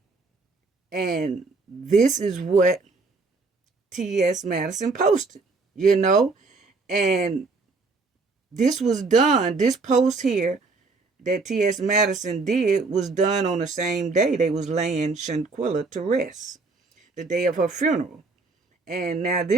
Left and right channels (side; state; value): left; quieter; 3.9 dB